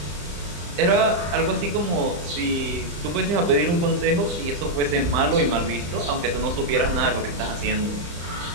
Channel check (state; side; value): late; left; 35 ms